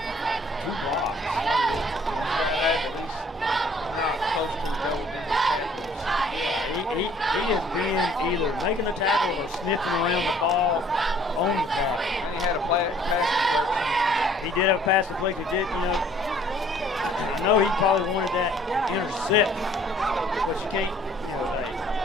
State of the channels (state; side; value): normal; both; correlation 0.57